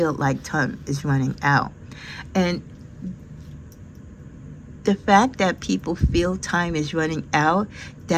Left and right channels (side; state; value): both; identical; correlation 1.00